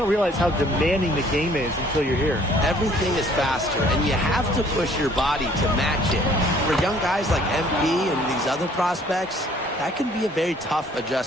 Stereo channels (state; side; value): normal; both; correlation 0.58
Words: realize how demanding the game is until you're here. Everything is faster, and you have to push your body to match it. For young guys like MP and these other prospects, that can be a very tough